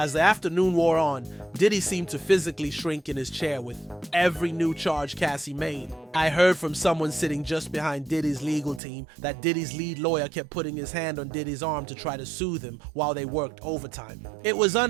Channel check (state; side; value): drops out; left; at 8.8 s